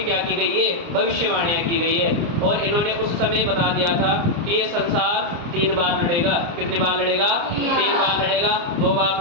क्या की गई है? भविष्यवाणियां की गई है। और इन्होंने उस समय बता दिया था कि ये संसार 3 बार लड़ेगा। कितनी बार लड़ेगा? 3 बार लड़ेगा। 2 बार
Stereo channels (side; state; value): left; late; 29 ms